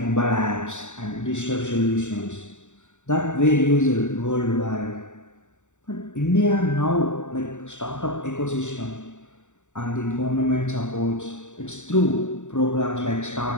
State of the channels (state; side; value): late; right; 0.84 ms